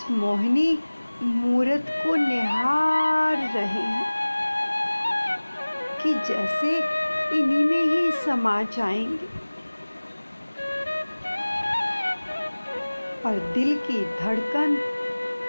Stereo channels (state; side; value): inverted; both; correlation -1.00